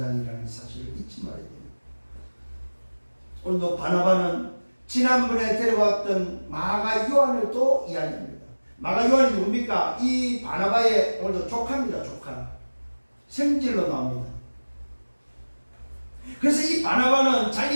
사실을 잊지 말아야 됩니다. 오늘도 바나바는 지난번에 데려왔던 마가 요한을 또 이야기합니다. 마가 요한이 누굽니까? 이 바나바의 오늘도 조카입니다. 조카. 생질로 나옵니다. 그래서 이 바나바는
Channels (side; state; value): both; inverted; correlation -1.00